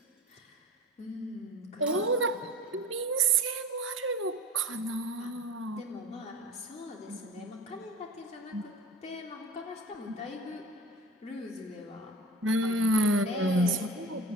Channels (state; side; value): normal; both; correlation 0.36